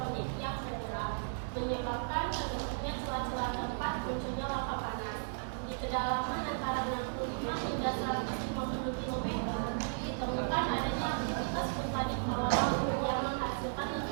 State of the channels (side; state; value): left; silent; digital silence